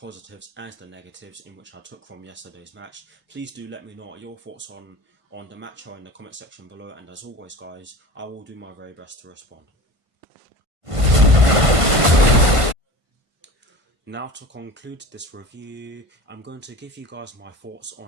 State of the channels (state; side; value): late; left; 1.5 ms